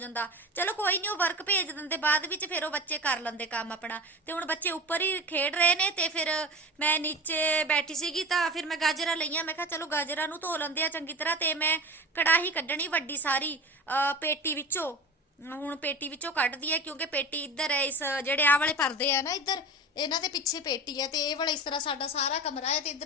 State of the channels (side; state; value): both; normal; correlation 0.31